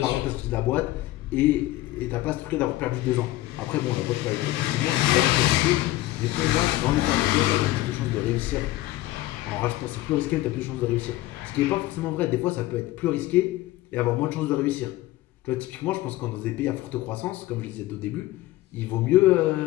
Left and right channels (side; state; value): right; quieter; 16.7 dB